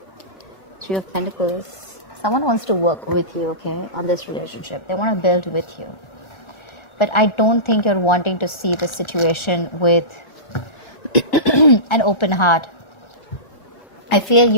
Three of Pentacles. Someone wants to work with you, okay, on this relationship. They want to build with you. But I don't think you're wanting to see the situation with an open heart. I feel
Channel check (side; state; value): right; late; 1.4 ms